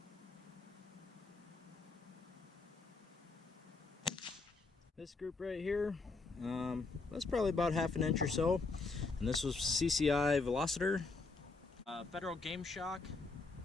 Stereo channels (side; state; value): right; quieter; 3.9 dB